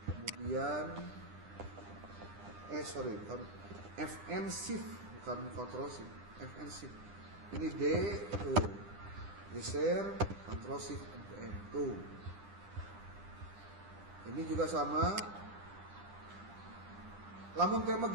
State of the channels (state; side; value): late; left; 10 ms